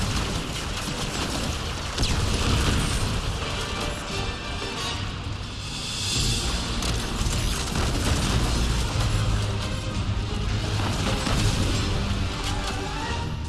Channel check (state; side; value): identical; both; correlation 1.00